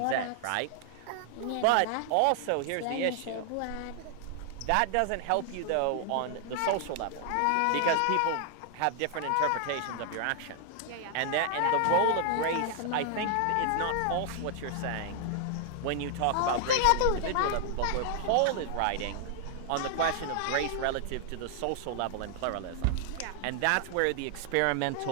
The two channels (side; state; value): both; different; correlation 0.00